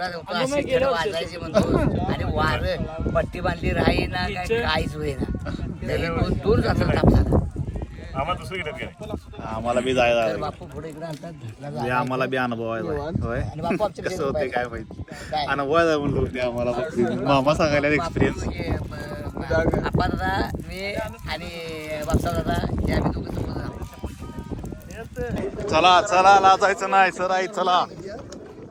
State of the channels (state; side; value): identical; both; correlation 1.00